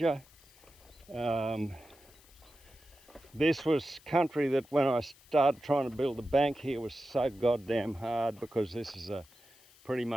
This was country that when I started trying to build a bank here was so goddamn hard, because this is pretty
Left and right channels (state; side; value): noise; left; hiss, 26 dB below the sound